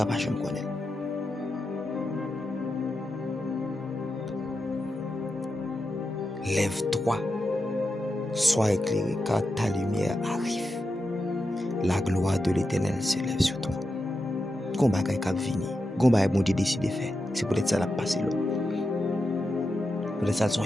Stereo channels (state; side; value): normal; both; correlation 0.88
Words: pas me connaître. Lève-toi, sois éclairé, car ta lumière arrive. La gloire de l'Éternel se lève sur toi. Combat qui a venu, combat bon Dieu décide de faire. C'est peut-être ça la passer là. Peut-être ça sont